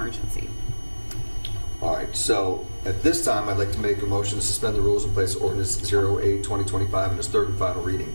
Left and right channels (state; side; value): inverted; both; correlation -1.00